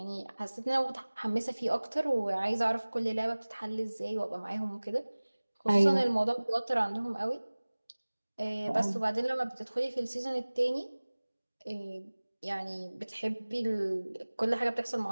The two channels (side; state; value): both; inverted; correlation -1.00